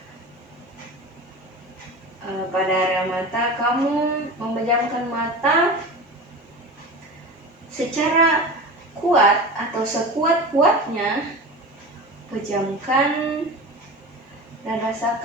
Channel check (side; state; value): both; normal; correlation 0.30